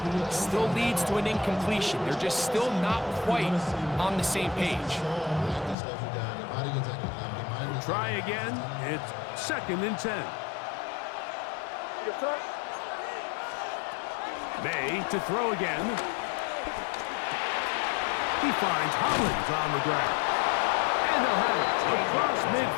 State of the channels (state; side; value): drops out; right; at 5.8 s